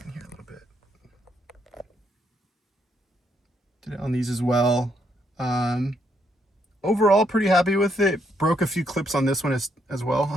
in here a little bit. Did it on these as well. Overall, pretty happy with it. Broke a few clips on this one as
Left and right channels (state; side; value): normal; both; correlation 0.74